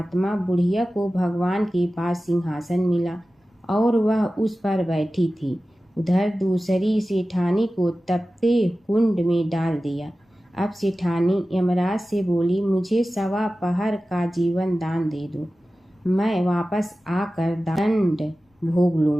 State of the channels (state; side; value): normal; both; correlation 0.95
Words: बुढ़िया को भगवान के पास सिंहासन मिला और वह उस पर बैठी थी। उधर दूसरी सेठानी को तपते कुंड में डाल दिया। अब सेठानी यमराज से बोली, मुझे 1.25 पहर का जीवन दान दे दो, मैं वापस आकर दंड भोग